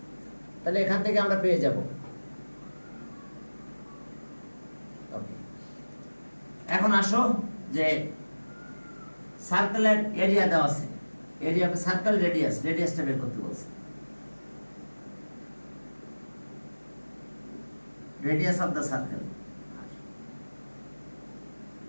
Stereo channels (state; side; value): inverted; both; correlation -1.00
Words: তাহলে এখান থেকে আমরা পেয়ে যাব। ওকে এখন আসো যে সার্কেলের এরিয়া দেওয়া আছে, এরিয়া অফ সার্কেল রেডিয়াস, রেডিয়াসটা বের করতে বলছে। Radius of the circle,